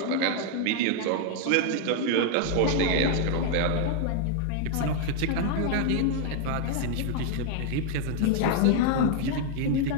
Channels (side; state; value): both; different; correlation 0.00